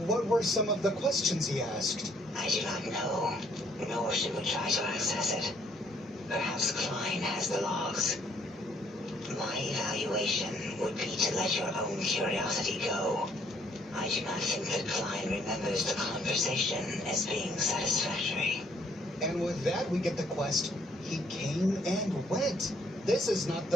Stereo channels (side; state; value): both; normal; correlation 0.65